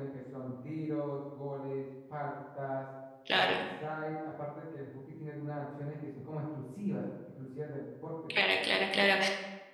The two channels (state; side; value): identical; both; correlation 1.00